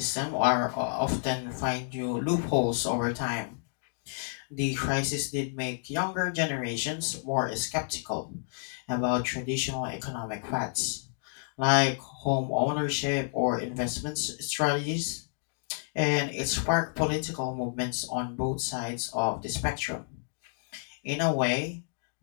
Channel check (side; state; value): right; silent; digital silence